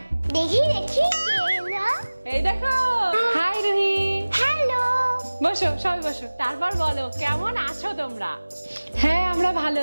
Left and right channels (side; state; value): both; inverted; correlation -1.00